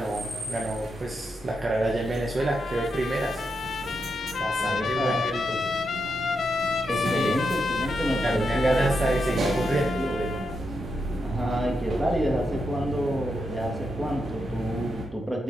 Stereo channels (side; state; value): both; normal; correlation 0.84